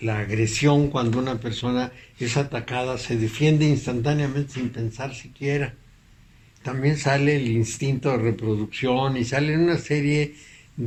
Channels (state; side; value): identical; both; correlation 1.00